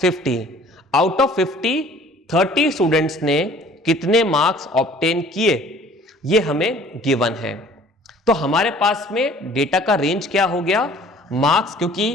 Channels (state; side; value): normal; both; correlation 0.52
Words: 50, out of 50 30 students ने कितने मार्क्स ऑब्टेन किए ये हमें गिवन है। तो हमारे पास में डेटा का रेंज क्या हो गया, मार्क्स, क्योंकि